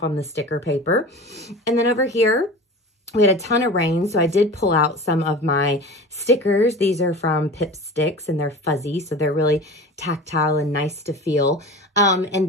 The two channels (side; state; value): both; normal; correlation 0.34